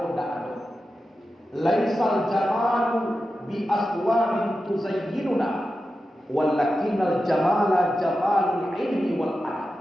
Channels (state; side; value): normal; both; correlation 0.91